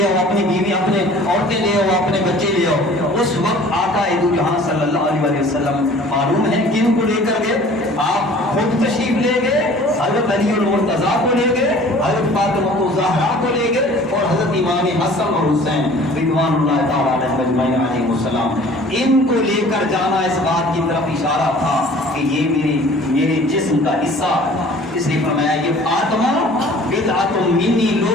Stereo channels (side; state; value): both; normal; correlation 0.48